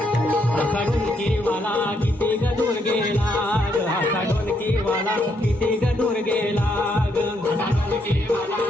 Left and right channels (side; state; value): both; normal; correlation 0.75